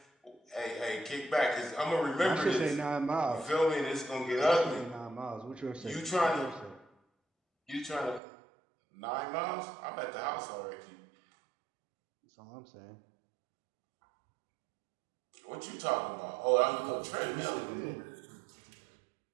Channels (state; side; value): drops out; left; at 8.2 s